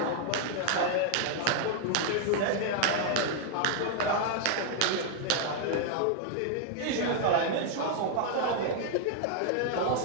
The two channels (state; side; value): different; both; correlation 0.00